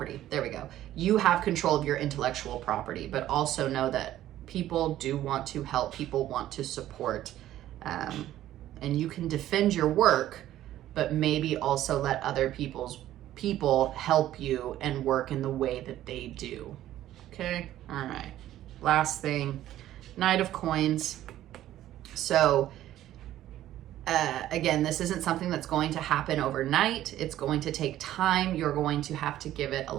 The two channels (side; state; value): left; quieter; 13.2 dB